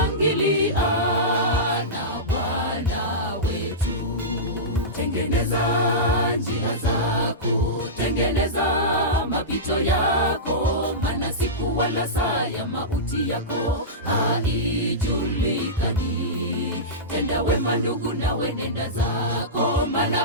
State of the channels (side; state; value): both; normal; correlation -0.16